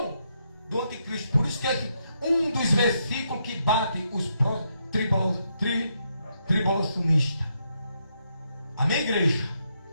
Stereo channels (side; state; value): both; inverted; correlation -0.79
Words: do anticristo. Por isso que é um dos versículos que bate os tribulacionistas. Amém, igreja?